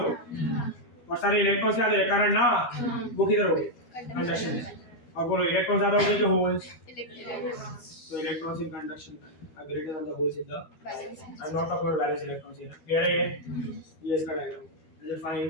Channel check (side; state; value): right; late; 12 ms